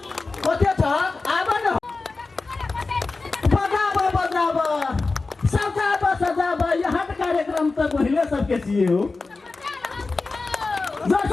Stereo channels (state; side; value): quieter; right; 3.8 dB